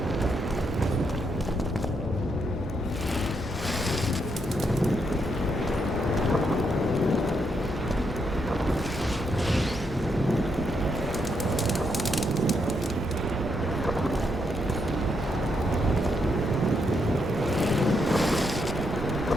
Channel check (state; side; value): normal; both; correlation 0.78